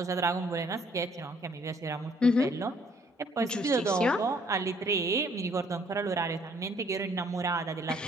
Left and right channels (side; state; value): both; normal; correlation 0.63